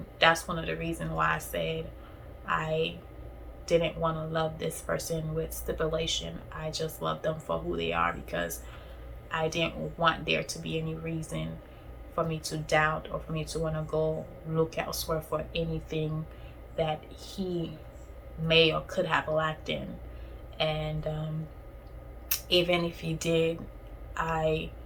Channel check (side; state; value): both; identical; correlation 1.00